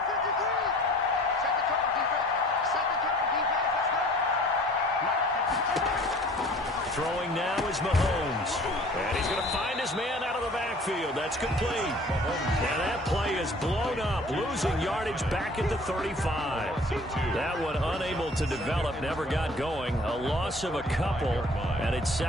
Throwing now is Mahomes. And he's going to find his man out of the backfield. That's complete. And that play is blown up, losing yardage back at the 35. That one unable to develop, never got going. A loss of a couple, and it's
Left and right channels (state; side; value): normal; both; correlation 0.49